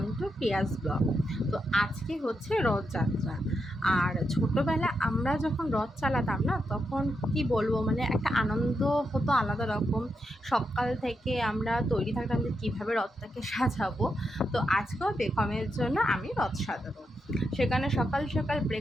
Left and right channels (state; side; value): normal; both; correlation 0.84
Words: to Piyas blog. তো আজকে হচ্ছে রথযাত্রা। আর ছোটোবেলা আমরা যখন রথ চালাতাম না, তখন কি বলবো, মানে একটা আনন্দ হতো আলাদা রকম। সকাল থেকে আমরা তৈরি থাকতাম যে কীভাবে রথটাকে সাজাবো। তো আজকেও বেগমের জন্য আমি রথ সাজাবো। সেখানে সকাল সকাল